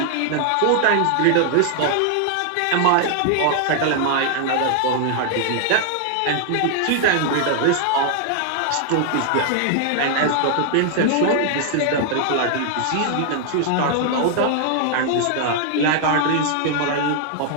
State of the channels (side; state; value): both; different; correlation 0.00